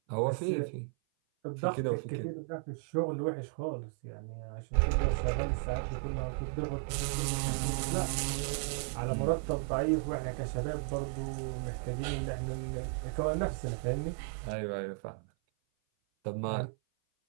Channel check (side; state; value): left; silent; 55 dB below the other